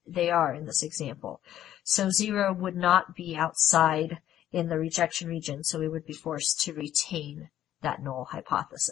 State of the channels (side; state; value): right; quieter; 11.9 dB